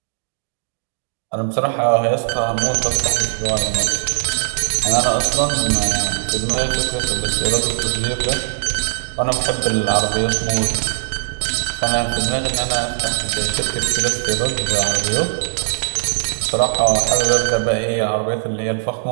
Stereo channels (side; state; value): left; silent; digital silence